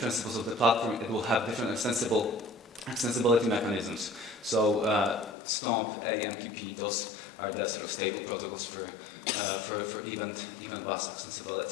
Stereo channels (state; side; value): drops out; right; at 5.4 s